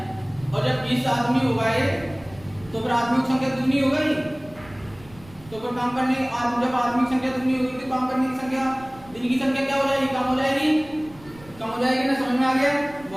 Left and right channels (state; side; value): noise; right; rumble, 22 dB below the sound